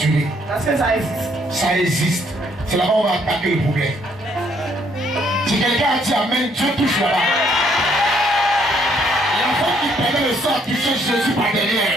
ris? Parce que ça existe. Ça existe. C'est là-bas où on va attaquer le problème. Si quelqu'un a dit amen, Dieu touche là-bas. L'enfant qui permet le sang toucher Jésus par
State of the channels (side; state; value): both; normal; correlation 0.68